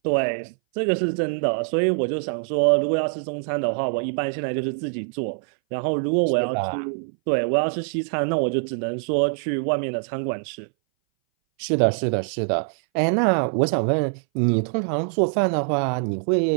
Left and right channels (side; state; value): left; silent; 60 dB below the other